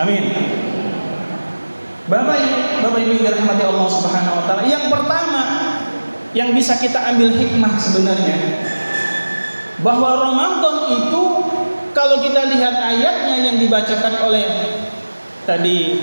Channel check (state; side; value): inverted; both; correlation -1.00